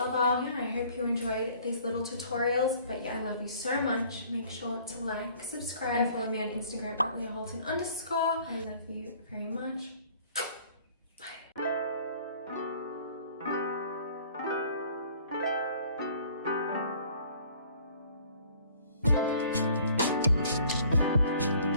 Yeah, I hope you enjoyed these little tutorials. But yeah, I love you so much. Make sure to like, subscribe, and follow me on Instagram at LeahHolton_. I love you very much.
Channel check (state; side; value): inverted; both; correlation -0.55